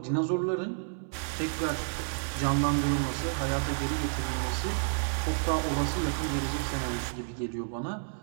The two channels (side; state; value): left; silent; digital silence